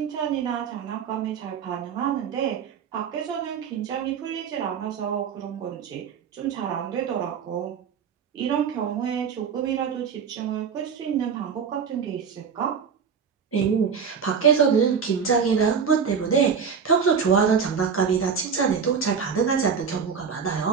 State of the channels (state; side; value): quieter; left; 6.5 dB